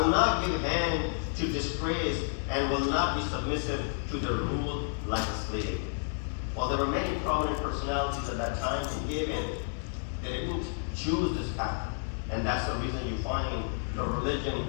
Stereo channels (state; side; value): silent; right; digital silence